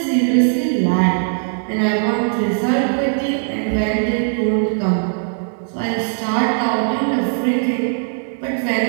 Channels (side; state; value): left; silent; digital silence